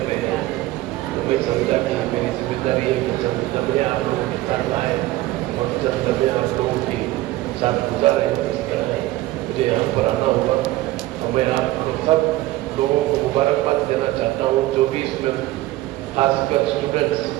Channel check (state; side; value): quieter; left; 17.2 dB